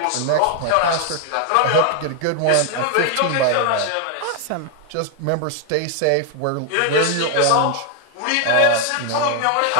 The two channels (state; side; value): different; both; correlation 0.00